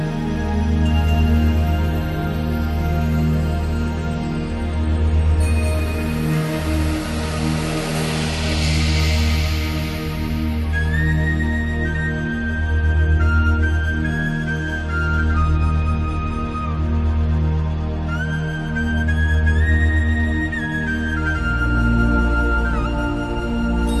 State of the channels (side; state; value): both; identical; correlation 1.00